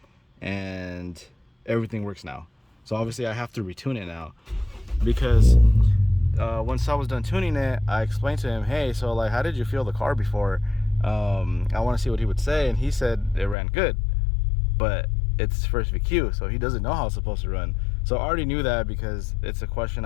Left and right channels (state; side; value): drops out; right; at 13.6 s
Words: and everything works now. So obviously I have to retune it now, because once I was done tuning it, I explained to him, hey, so like, how did you feel the car before? I want to see what he would say, and he said it ran good, but it's first VQ, so he doesn't know how it's supposed to run. So I already knew that, because it's a question